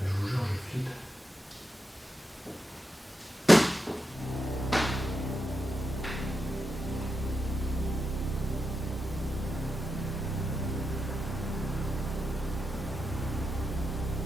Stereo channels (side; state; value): both; normal; correlation 0.86